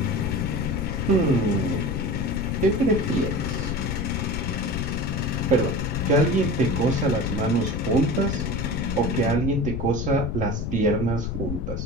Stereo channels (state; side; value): noise; left; rumble, 3 dB below the sound